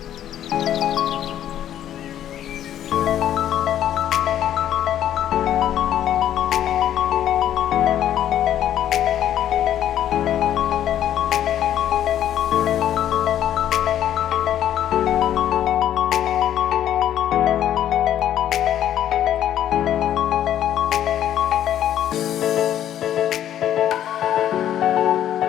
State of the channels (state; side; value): quieter; right; 11.1 dB